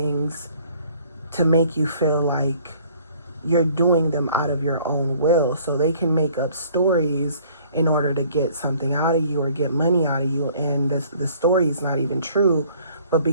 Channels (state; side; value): inverted; both; correlation -0.56